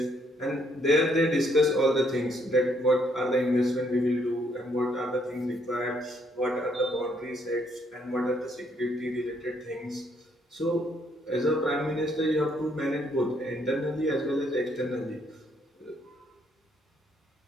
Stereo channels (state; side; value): normal; both; correlation 0.70